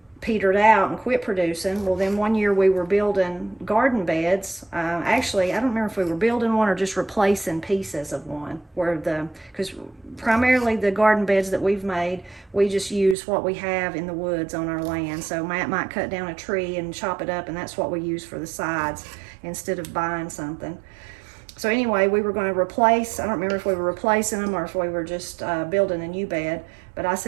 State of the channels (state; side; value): drops out; left; at 13.2 s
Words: petered out and quit producing. Well, then one year we were building garden beds. Actually, I don't remember if we were building one or just replacing pieces of one, because primarily the garden beds that we've made, we just use what we have in the woods on our land. So Matt might cut down a tree and chop it up, and that's what we use for the sides instead of buying something. So anyway, we were going to replace, I don't remember if we were replacing them or if we were just building a new bed. But I